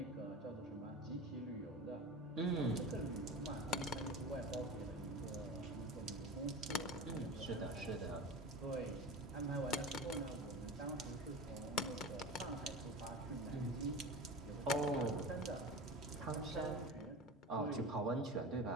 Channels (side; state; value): both; normal; correlation 0.30